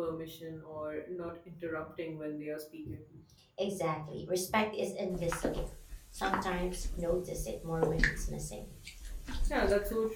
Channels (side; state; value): both; identical; correlation 1.00